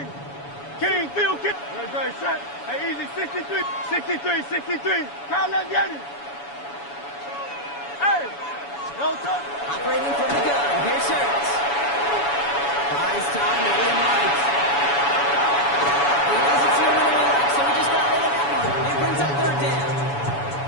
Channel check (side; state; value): right; late; 7.1 ms